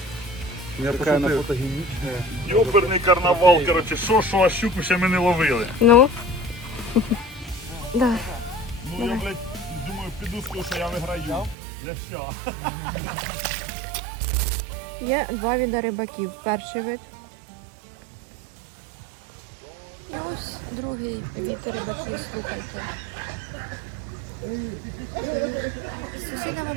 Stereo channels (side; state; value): left; drops out; at 11.6 s